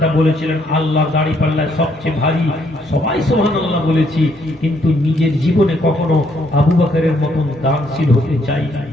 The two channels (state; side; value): normal; both; correlation 0.71